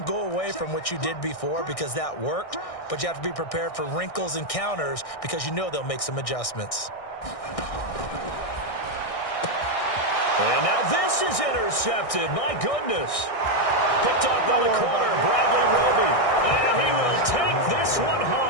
go away from what you did before because that worked, but you have to be prepared for wrinkles and counters because you know they'll make some adjustments. And now this is intercepted. My goodness. Picked off by the corner, Bradley Roby. And he will take this one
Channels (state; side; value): late; right; 1.6 ms